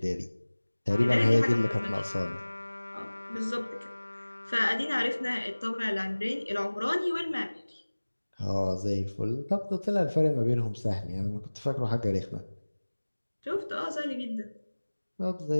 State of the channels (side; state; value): both; inverted; correlation -1.00